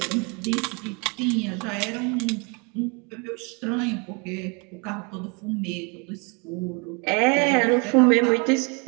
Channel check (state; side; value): quieter; left; 32.6 dB